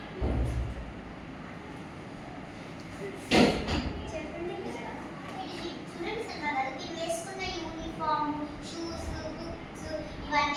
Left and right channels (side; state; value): both; identical; correlation 1.00